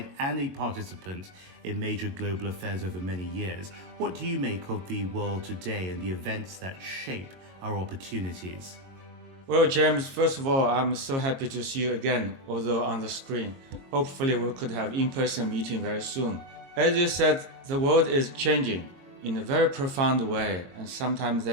and a participant in major global affairs over many years, what do you make of the world today and the events that shape our opportunities? Well, James, first of all, I'm so happy to see you again, although on the screen. Hopefully we could have in-person meeting very soon. As you said, the world is changing in a very profound way, and sometimes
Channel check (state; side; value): late; left; 22 ms